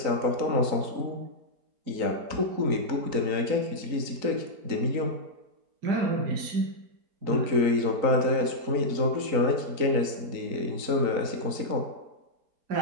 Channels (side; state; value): left; late; 4.0 ms